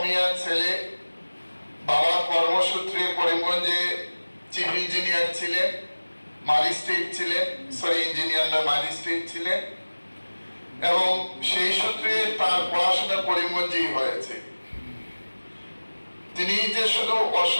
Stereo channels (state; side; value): inverted; both; correlation -1.00